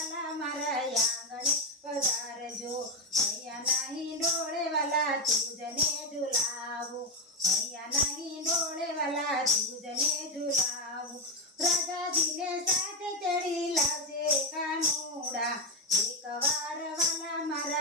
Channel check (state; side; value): normal; both; correlation 0.08